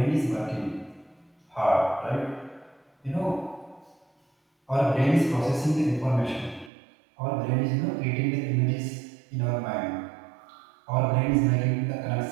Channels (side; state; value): left; drops out; at 6.7 s